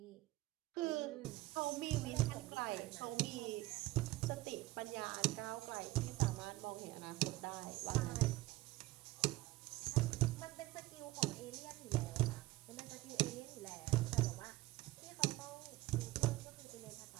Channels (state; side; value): quieter; left; 18.4 dB